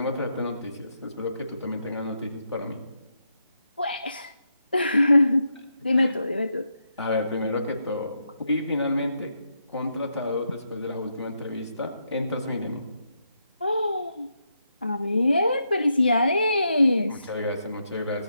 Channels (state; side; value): inverted; both; correlation -0.82